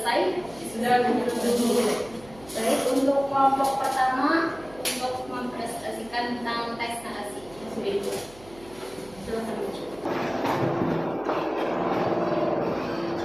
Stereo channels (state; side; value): noise; right; hum, 22 dB below the sound